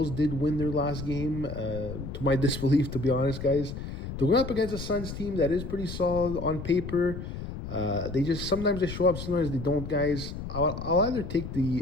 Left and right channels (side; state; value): left; noise; rumble, 8 dB below the sound